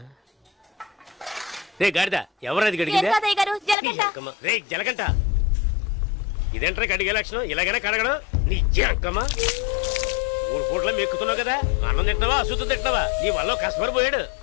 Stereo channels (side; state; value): right; drops out; at 3.8 s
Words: రే గాడిద ఎవరది గడిగిందా? రే జలగంట, ఇదేంట్రా గడిగే లక్షణం? ఇలాగైనా కడగడం నీ జంకమ్మా. 3 పూట్ల మెక్కుతున్నావు కదా, అన్నం తింటున్నావా అశుద్ధం తింటున్నావా? నీ వల్ల కస్టమర్ పోయాడు.